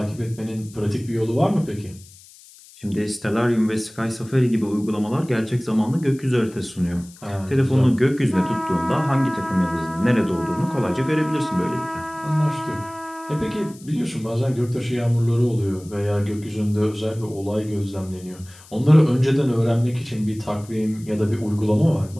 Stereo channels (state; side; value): noise; left; hiss, 23 dB below the sound